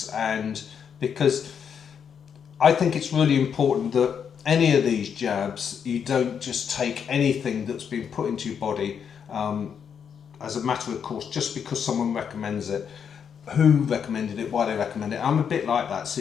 because I think it's really important that any of these jabs, you don't just take anything that's been put into your body as a matter of course, just because someone recommends it. Who recommended it, why they recommend it. I'm a bit like that, so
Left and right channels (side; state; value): right; quieter; 7.4 dB